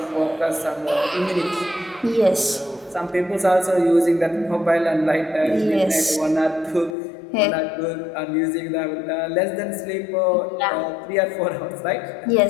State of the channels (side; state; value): right; drops out; at 7.0 s